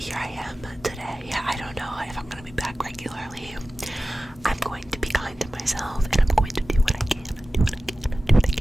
I am today. I don't know if I'm gonna be back regularly. I'm going to be kind to myself, and I'm going to do what I can.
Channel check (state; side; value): normal; both; correlation 0.96